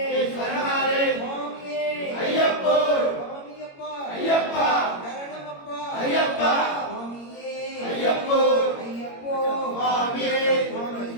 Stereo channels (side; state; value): right; late; 21 ms